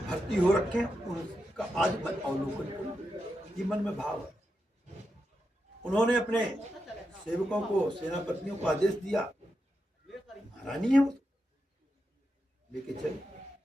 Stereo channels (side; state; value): both; normal; correlation 0.87